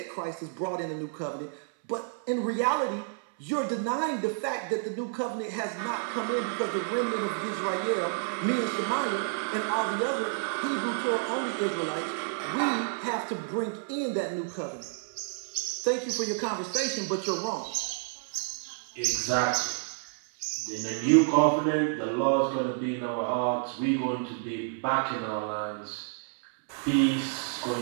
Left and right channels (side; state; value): left; silent; digital silence